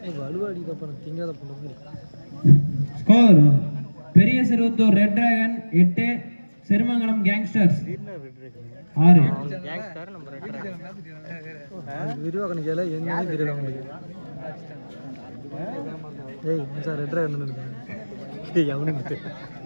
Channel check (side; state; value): both; inverted; correlation -1.00